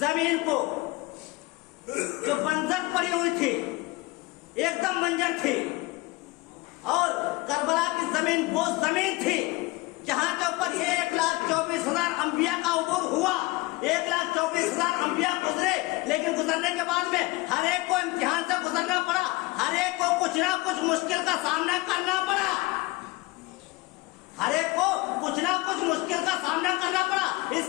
کو, جو بنجر پڑی ہوئی تھی, ایک دم بنجر تھی, اور کربلا کی زمین وہ زمین تھی جہاں کے اوپر 1,24,000 انبیاء کا عبور ہوا. 1,24,000 انبیاء گزرے, لیکن گزرنے کے بعد میں ہر ایک کو امتحان سے گزرنا پڑا, ہر ایک کو کچھ نہ کچھ مشکل کا سامنا کرنا پڑا, ہر ایک کو کچھ نہ کچھ مشکل کا سامنا کرنا پڑا. اس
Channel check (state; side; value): quieter; right; 22.4 dB